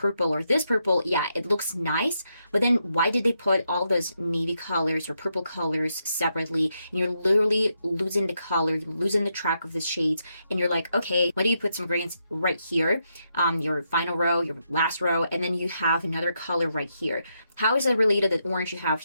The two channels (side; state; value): both; inverted; correlation -0.81